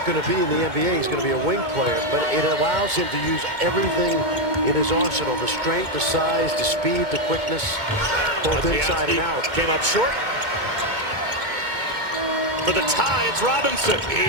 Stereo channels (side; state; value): left; late; 2.2 ms